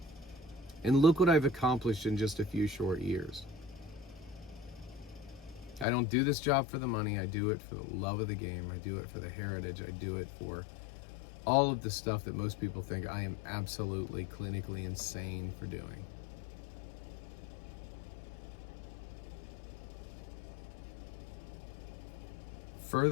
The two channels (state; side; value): drops out; right; at 5.9 s